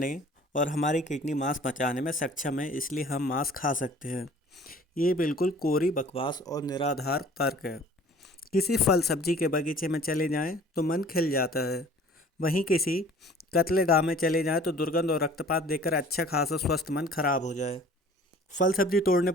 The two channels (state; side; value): normal; both; correlation 0.49